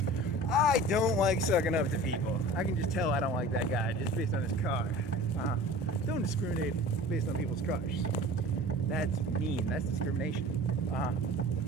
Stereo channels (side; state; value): both; normal; correlation 0.40